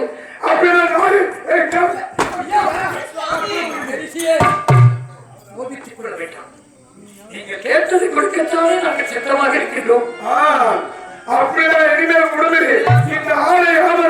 அப்படி நீங்க கேட்டது கொடுக்கத்தானே நாங்கள் சித்தமாக இருக்கின்றோம். அப்படிதான் இனிமேல் கொடுக்குது. இந்த ஆலை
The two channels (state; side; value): identical; both; correlation 1.00